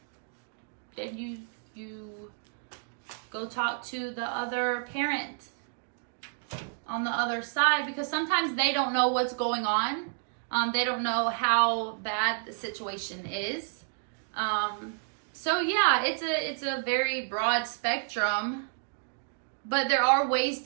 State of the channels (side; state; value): left; silent; digital silence